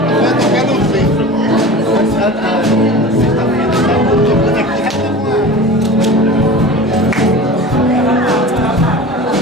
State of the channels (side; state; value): both; normal; correlation 0.35